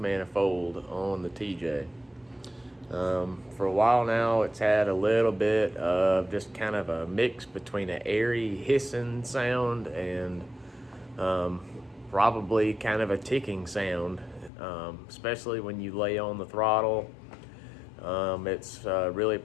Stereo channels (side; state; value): right; drops out; at 14.5 s